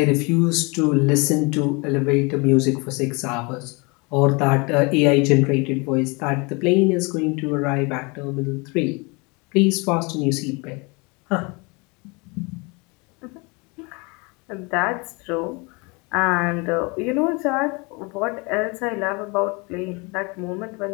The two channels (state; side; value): quieter; right; 28.9 dB